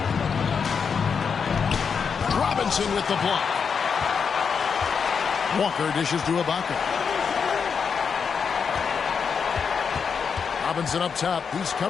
Robinson with the block. Walker dishes to Ibaka. Robinson up top. He's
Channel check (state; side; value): quieter; right; 6.2 dB